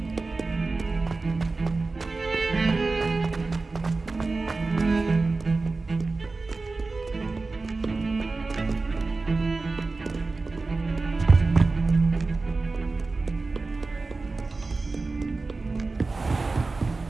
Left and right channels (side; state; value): left; quieter; 3.7 dB